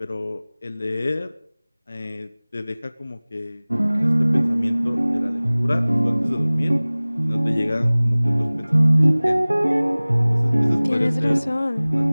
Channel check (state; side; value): inverted; both; correlation -0.99